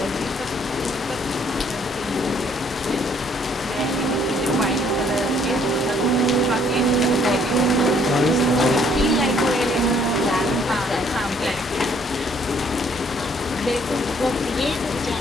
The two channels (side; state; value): both; normal; correlation 0.64